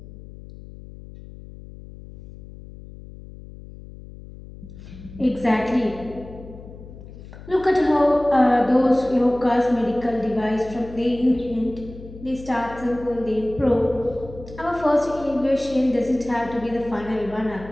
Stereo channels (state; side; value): noise; left; hum, 16 dB below the sound